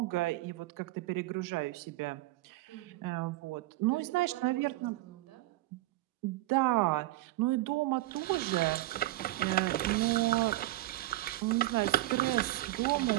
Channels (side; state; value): left; quieter; 17.1 dB